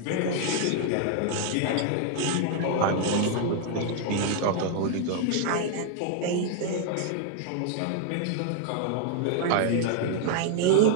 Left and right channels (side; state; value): both; different; correlation 0.00